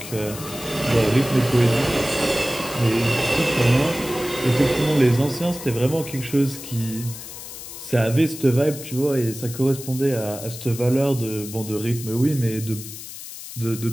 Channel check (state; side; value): noise; left; hiss, 12 dB below the sound